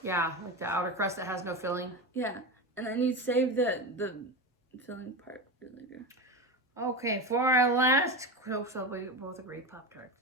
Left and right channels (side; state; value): both; normal; correlation 0.21